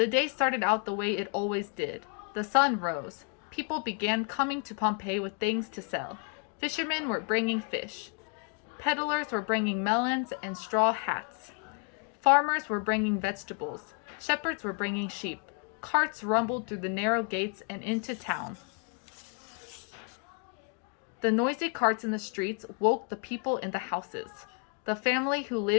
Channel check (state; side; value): quieter; right; 38.9 dB